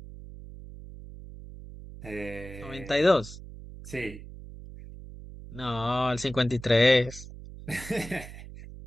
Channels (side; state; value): right; noise; hum, 14 dB below the sound